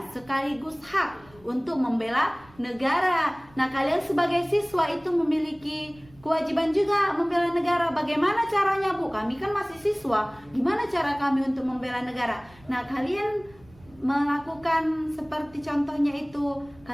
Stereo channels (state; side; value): noise; right; rumble, 26 dB below the sound